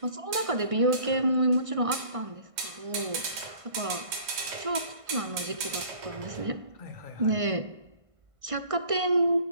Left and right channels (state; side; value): late; left; 1.5 ms